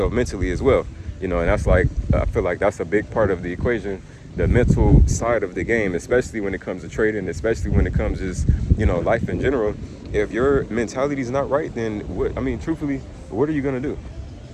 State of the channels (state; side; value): identical; both; correlation 1.00